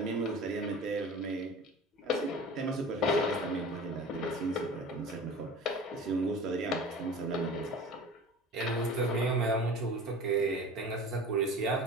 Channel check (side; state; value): both; normal; correlation 0.39